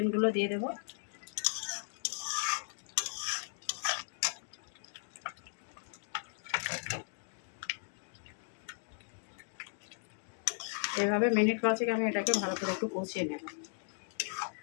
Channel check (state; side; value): silent; right; digital silence